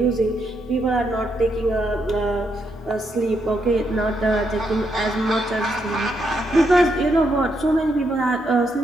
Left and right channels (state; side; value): normal; both; correlation 0.79